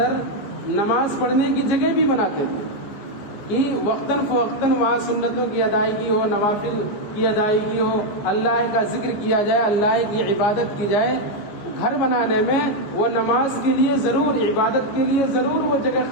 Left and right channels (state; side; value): late; right; 15 ms